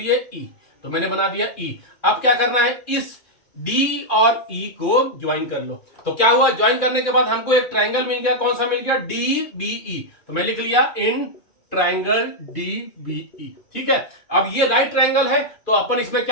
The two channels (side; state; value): right; late; 2.4 ms